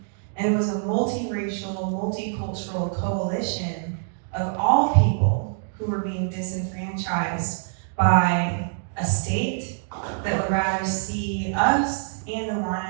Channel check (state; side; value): silent; left; digital silence